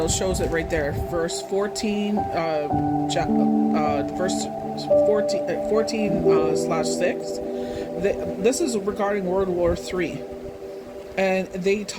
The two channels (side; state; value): both; identical; correlation 1.00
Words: shows it right there, verse 14, verse 14/6. This is regarding World War III, and they